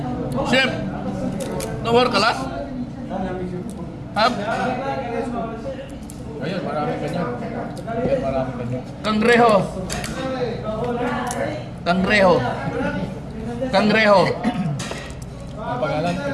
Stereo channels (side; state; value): both; identical; correlation 1.00